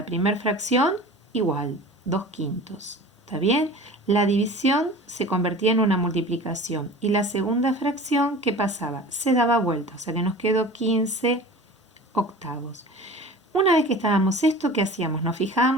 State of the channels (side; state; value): both; normal; correlation 0.39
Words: primera fracción igual, 2/5. ¿Está bien? La división se convertía en una multiplicación. Y la segunda fracción, ¿qué pasaba? Se daba vuelta, o sea que nos quedó 15/8. Una vez que estábamos esto, ¿qué hacíamos? Nos